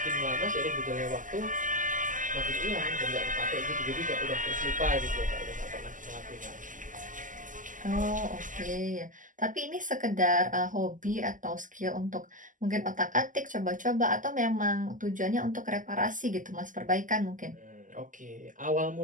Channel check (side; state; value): left; late; 0.38 ms